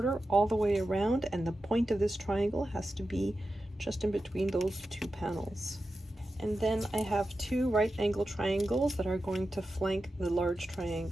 all the way around, and the point of this triangle has to be just in between those two panels. And then I have two right angle triangles that are going to flank the large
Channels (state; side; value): normal; both; correlation 0.91